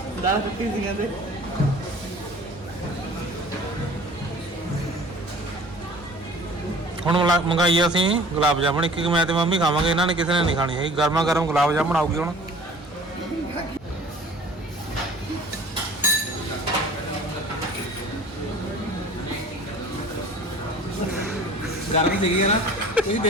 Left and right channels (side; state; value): both; normal; correlation 0.46